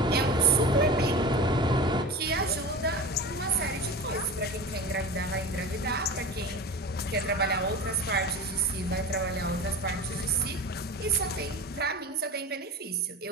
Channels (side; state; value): both; normal; correlation 0.31